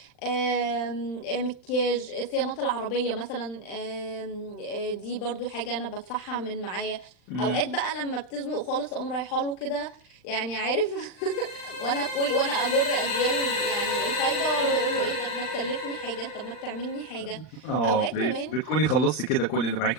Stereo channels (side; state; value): right; late; 39 ms